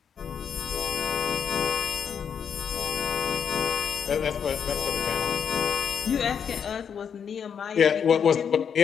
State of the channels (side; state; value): right; quieter; 7.4 dB